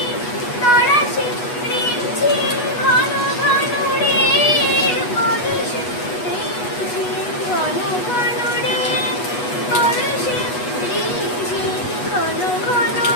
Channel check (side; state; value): right; late; 8.2 ms